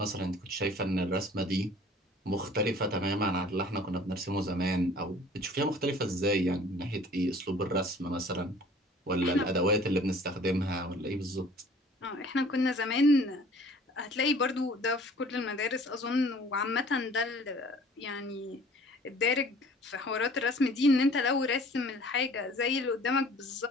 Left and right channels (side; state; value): both; normal; correlation 0.50